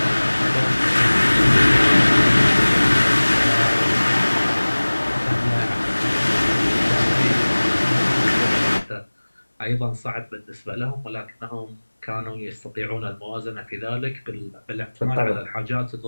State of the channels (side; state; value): both; inverted; correlation -1.00